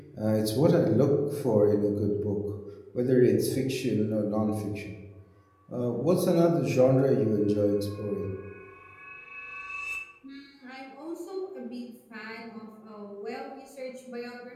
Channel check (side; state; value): both; identical; correlation 1.00